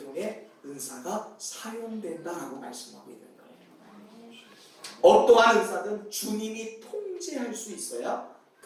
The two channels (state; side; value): identical; both; correlation 1.00